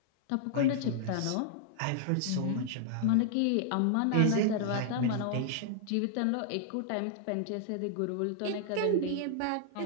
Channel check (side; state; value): both; different; correlation -0.01